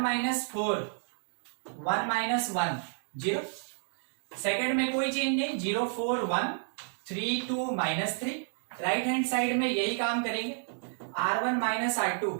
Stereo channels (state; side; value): silent; left; digital silence